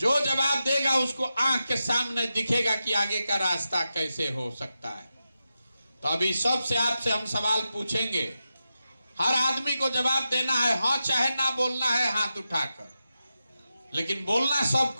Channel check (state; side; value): inverted; both; correlation -0.90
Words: जवाब देगा उसको आंख के सामने दिखेगा कि आगे का रास्ता कैसे हो सकता है। तो अभी सबसे आपसे हम सवाल पूछेंगे। हर आदमी को जवाब देना है, हाँ चाहे ना बोलना है हाथ उठाकर, लेकिन बोलना